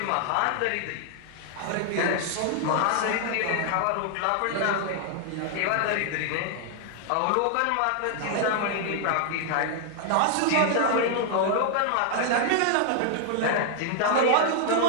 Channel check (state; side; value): different; both; correlation 0.00